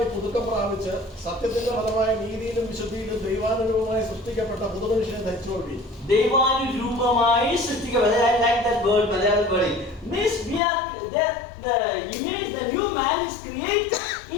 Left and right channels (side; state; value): right; drops out; at 10.6 s